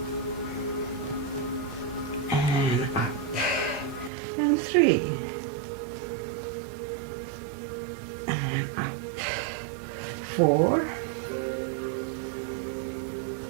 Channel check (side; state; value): left; drops out; at 4.1 s